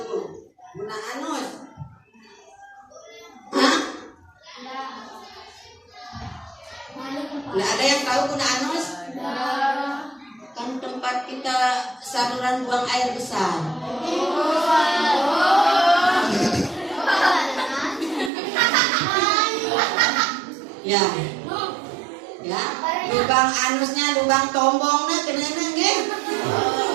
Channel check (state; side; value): drops out; left; at 18.3 s